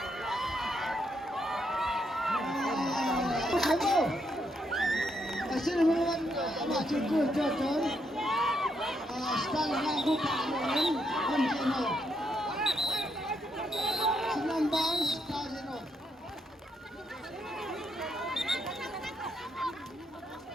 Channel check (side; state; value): both; normal; correlation 0.77